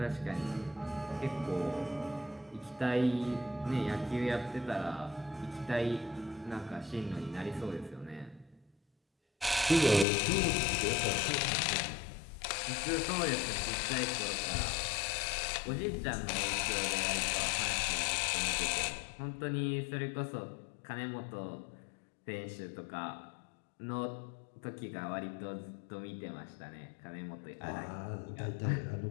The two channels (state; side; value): drops out; right; at 10.1 s